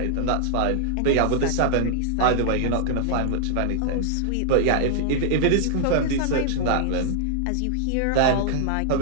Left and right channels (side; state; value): both; different; correlation -0.01